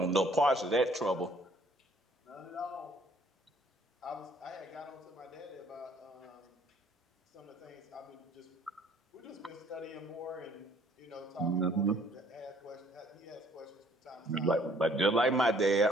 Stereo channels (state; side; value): normal; both; correlation 0.60